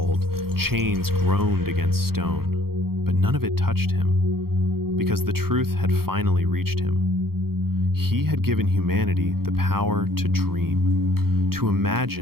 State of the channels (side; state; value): left; late; 0.94 ms